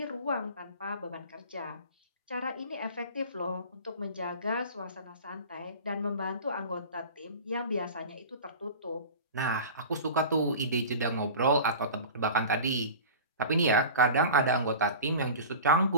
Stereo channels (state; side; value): inverted; both; correlation -0.36